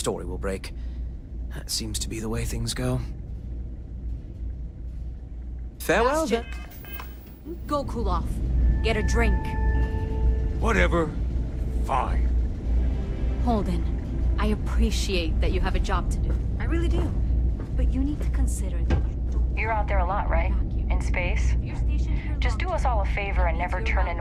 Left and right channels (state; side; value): identical; both; correlation 1.00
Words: will break. That seems to be the way things go. Farewell, then. Go cool off. Get a drink. Whatever. Fine. Holden, I appreciate that you have a job to do. I really do. But you need to consider that You're out there a lot, right? In space? Just do us all a favor and never turn